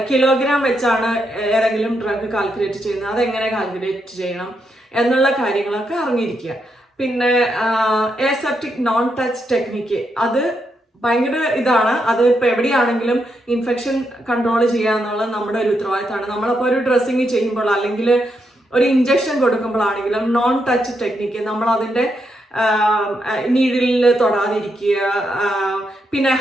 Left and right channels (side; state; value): both; normal; correlation 0.81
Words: കിലോഗ്രാം വെച്ചാണ് ഏതെങ്കിലും ഡ്രഗ് കാൽക്കുലേറ്റ് ചെയ്യുന്നത്, അതെങ്ങനെ കാൽക്കുലേറ്റ് ചെയ്യണം എന്നുള്ള കാര്യങ്ങളൊക്കെ അറിഞ്ഞിരിക്കുക. പിന്നെ എസെപ്റ്റിക് നോൺ ടച്ച് ടെക്നിക്ക്, അത് ഭയങ്കര ഇതാണ്. അത് ഇപ്പോൾ എവിടെയാണെങ്കിലും ഇൻഫെക്ഷൻ കൺട്രോൾ ചെയ്യുക എന്നുള്ളത് നമ്മുടെ ഒരു ഉത്തരവാദിത്തമാണ്. നമ്മളപ്പോൾ ഒരു ഡ്രസ്സിങ് ചെയ്യുമ്പോൾ അല്ലെങ്കിൽ ഒരു ഇഞ്ചക്ഷൻ കൊടുക്കുമ്പോഴാണെങ്കിലും നോൺ ടച്ച് ടെക്നിക്ക്, നമ്മൾ അതിൻ്റെ നീഡിലിൽ തൊടാതിരിക്കുക. പിന്നെ